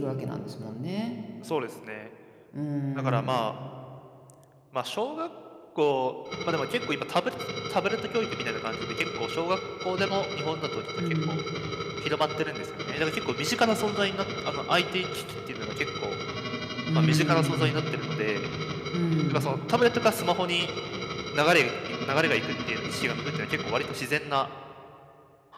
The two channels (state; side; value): identical; both; correlation 1.00